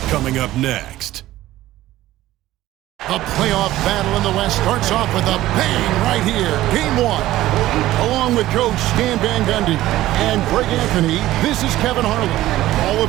coming up next. The playoff battle in the West starts off with a bang right here. Game one. Along with Coach Stan Van Gundy and Greg Anthony, this is Kevin Harlan. Hall of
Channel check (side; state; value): left; quieter; 15.4 dB